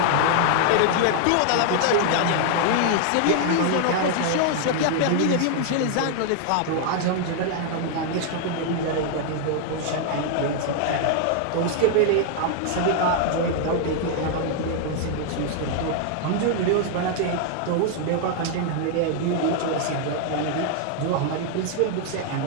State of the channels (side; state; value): both; different; correlation 0.00